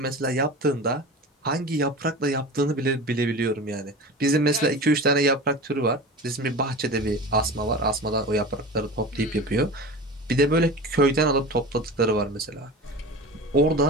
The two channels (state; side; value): normal; both; correlation 0.33